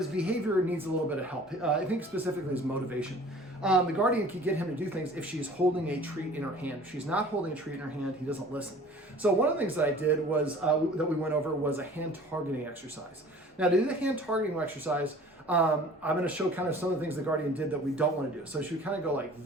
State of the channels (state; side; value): normal; both; correlation 0.47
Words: behavior needs a little bit of help. I think specifically his motivation. The guardian can get him to do things if she's holding a treat in her hand. If she's not holding a treat in her hand, he doesn't listen. So one of the things that I did was, that we went over, was a hand targeting exercise. Now to do the hand targeting exercise, I'm going to show kind of some of the things the guardian did that we don't want to do. So she would kind of go like